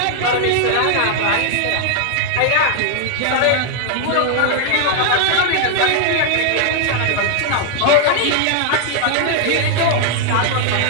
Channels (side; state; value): both; different; correlation 0.00